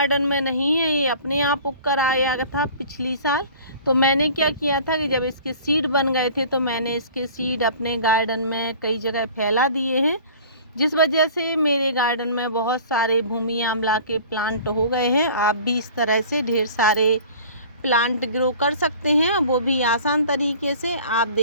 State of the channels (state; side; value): inverted; both; correlation -0.45